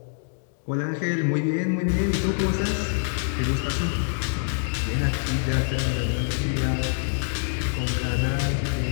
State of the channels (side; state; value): right; silent; digital silence